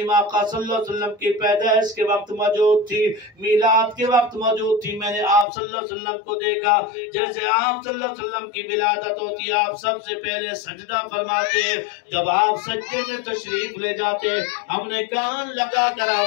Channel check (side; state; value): right; drops out; at 5.5 s